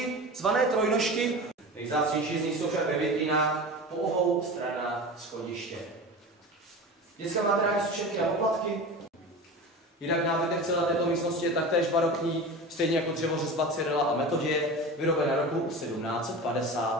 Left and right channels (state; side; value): normal; both; correlation 0.31